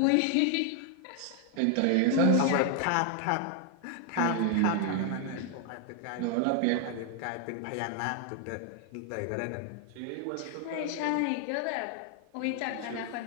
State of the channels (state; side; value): different; both; correlation 0.00